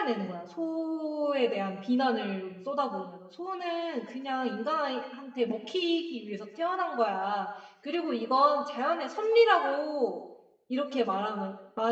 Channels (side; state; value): both; identical; correlation 1.00